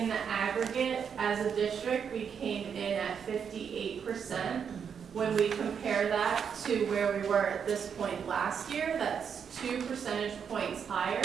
the aggregate, as a district, we came in at 58%. When we compare that to where we were at this point last year, that's 2 percentage points higher,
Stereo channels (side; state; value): left; quieter; 7.2 dB